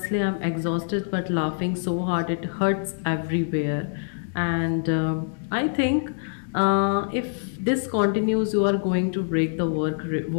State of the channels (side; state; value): right; silent; digital silence